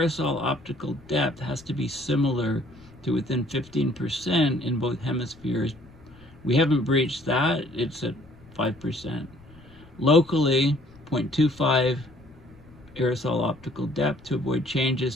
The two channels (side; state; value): left; noise; rumble, 23 dB below the sound